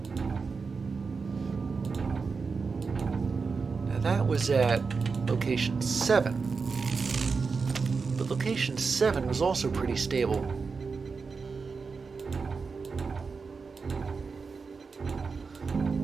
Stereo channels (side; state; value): left; quieter; 4.9 dB